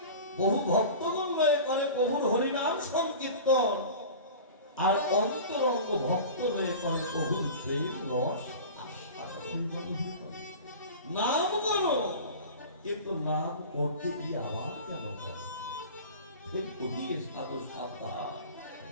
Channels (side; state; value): both; inverted; correlation -0.36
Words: বহু ভক্তগণ লয়ে করে প্রভুর হরিনাম সংকীর্তন, আর অন্তরঙ্গ ভক্ত লয়ে করে প্রভুর প্রেম রস আস্বাদন। নাম করো, কিন্তু নাম করতে গিয়ে আবার কেন করো? ফের করিয়ে সাধু সাবধান,